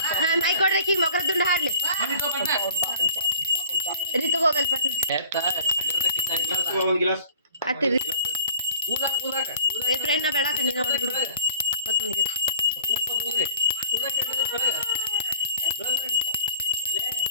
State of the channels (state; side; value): inverted; both; correlation -0.53